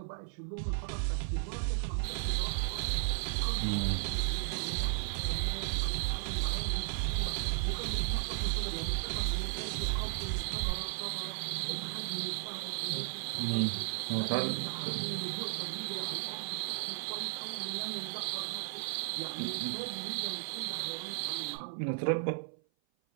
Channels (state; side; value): silent; left; 54 dB below the other